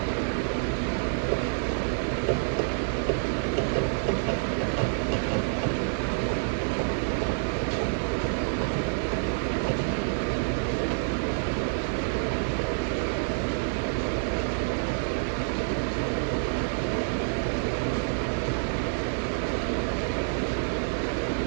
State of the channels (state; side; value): silent; left; digital silence